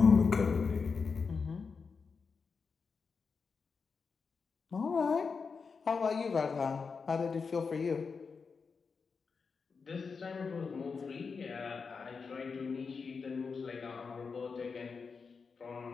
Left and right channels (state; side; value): quieter; right; 5.2 dB